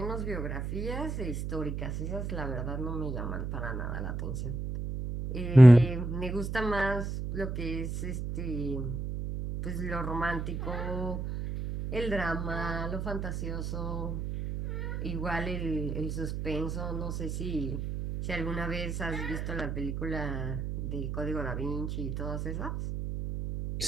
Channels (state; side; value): noise; right; hum, 3 dB below the sound